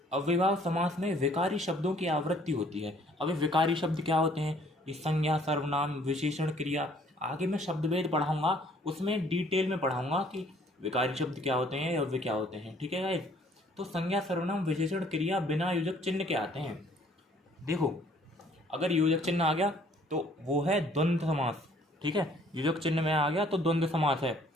अव्ययभाव समास में विकारी शब्दों की आवृत्ति होती है। अभी विकारी शब्द क्या होते हैं, ये संज्ञा, सर्वनाम, विशेषण, क्रिया, आगे मैं शब्दभेद पढ़ाऊंगा, उसमें डिटेल में पढ़ाऊंगा कि विकारी शब्द क्या होते हैं, अव्यय क्या होते हैं, ठीक है गाइस। तो संज्ञा, सर्वनाम, विशेषण, क्रिया बिना योजक चिन्ह के आते हैं। देखो अगर योजक चिन्ह आ गया तो वो है द्वंद्व समास, ठीक है, योजक चिन्ह में आ गया तो द्वंद्व समास है,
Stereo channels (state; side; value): normal; both; correlation 0.59